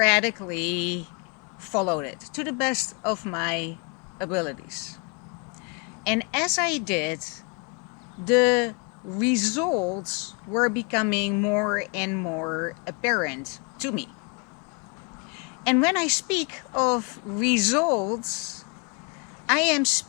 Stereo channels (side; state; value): right; quieter; 33.4 dB